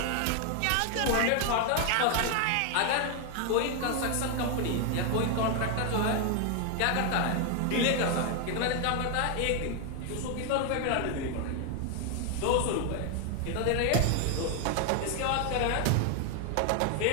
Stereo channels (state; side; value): different; both; correlation 0.01